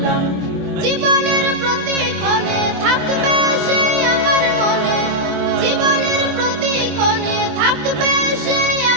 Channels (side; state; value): left; late; 24 ms